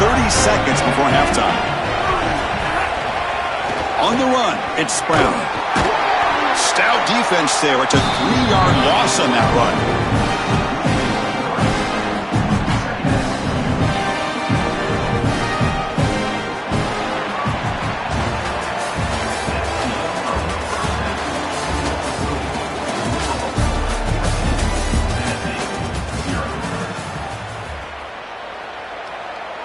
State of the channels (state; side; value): identical; both; correlation 1.00